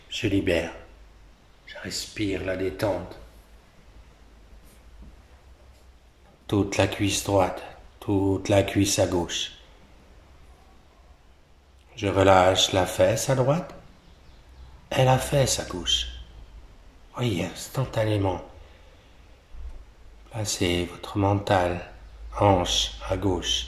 se libèrent. Je respire la détente. Toute la cuisse droite, toute la cuisse à gauche. Je relâche la fesse à droite et la fesse à gauche. Voyez, instantanément. Placez votre mental, hanche à gauche.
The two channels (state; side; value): identical; both; correlation 1.00